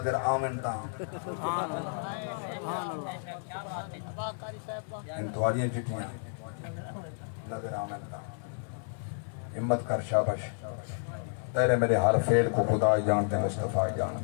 آمن تا ہن تواریاں چٹیاں نظر آمن تا ہمت کر شابش تیرے میرے ہر فعل کو خدا جانتے مصطفیٰ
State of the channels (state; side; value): silent; right; digital silence